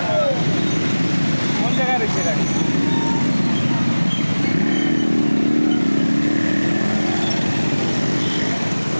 কোন জায়গায় রয়েছে গাড়ি?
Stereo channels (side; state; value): both; inverted; correlation -1.00